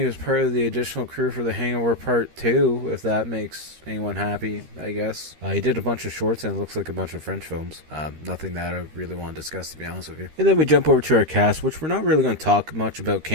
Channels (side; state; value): left; late; 13 ms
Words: was part of the additional crew for The Hangover Part 2, if that makes anyone happy, I guess. He did a bunch of shorts and it looks like a bunch of French films. Nothing that I really want to discuss, to be honest with you. And then we jump over to our cast, which we're not really going to talk much about